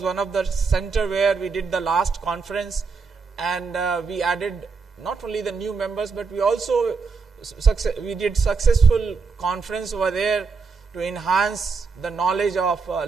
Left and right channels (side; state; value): left; quieter; 4.9 dB